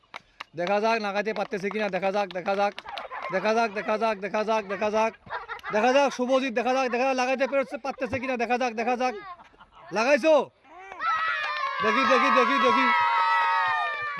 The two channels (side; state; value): both; identical; correlation 1.00